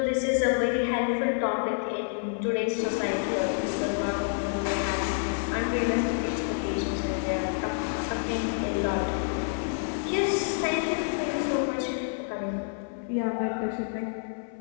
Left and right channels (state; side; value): silent; right; 57 dB below the other